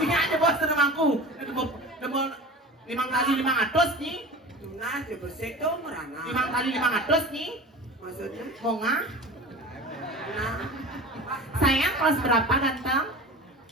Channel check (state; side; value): normal; both; correlation 0.35